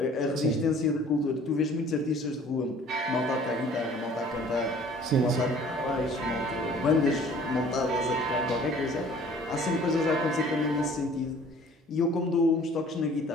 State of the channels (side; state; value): both; normal; correlation 0.52